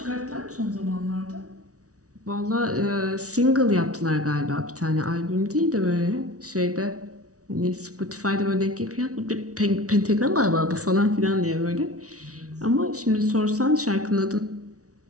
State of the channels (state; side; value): late; left; 0.67 ms